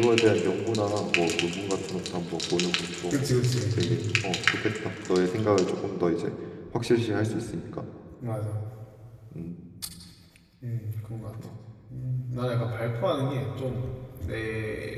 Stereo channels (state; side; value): identical; both; correlation 1.00